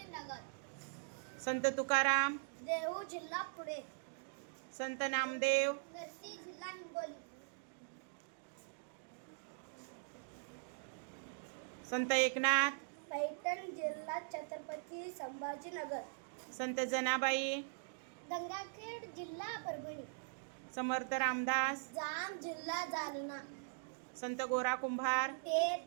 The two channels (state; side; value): silent; left; digital silence